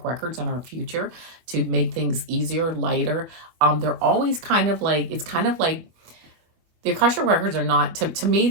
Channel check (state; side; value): late; left; 25 ms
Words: Records and our future to make things easier, lighter. They're always kind of like, it's kind of like, the Akashic Records are not, to me,